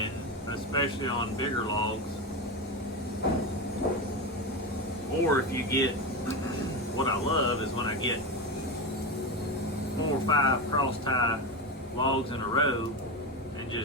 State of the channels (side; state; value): both; normal; correlation 0.18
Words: especially on bigger logs, or if you get, what I love is when I get 4 or 5 cross tie logs in a row and